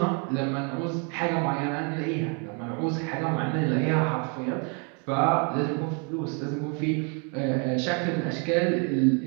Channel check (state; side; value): quieter; left; 36.6 dB